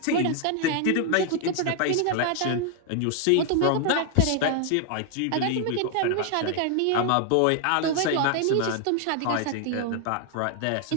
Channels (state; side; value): different; both; correlation 0.00